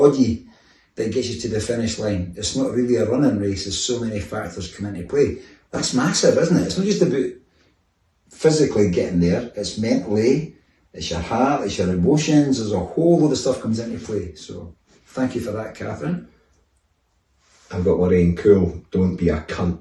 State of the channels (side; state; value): both; identical; correlation 1.00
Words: that gets you to the finish line. It's not really a running race, there's so many factors come into play. That's massive, isn't it? It's not just about physically getting there, it's mentally, it's your heart, it's your emotions, there's a whole load of stuff comes into play. So thank you for that, Catherine. I've got Lorraine Cool, don't be a